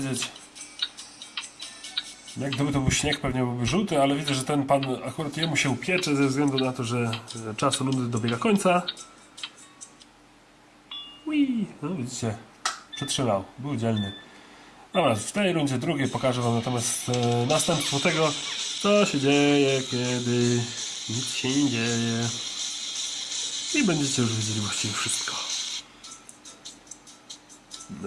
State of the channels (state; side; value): identical; both; correlation 1.00